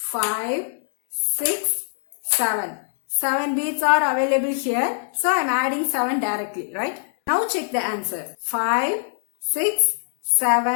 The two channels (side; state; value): right; silent; digital silence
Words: 6, 7. 7 bits are available here. So I am adding 7 directly, right? Now check the answer. 5, 6,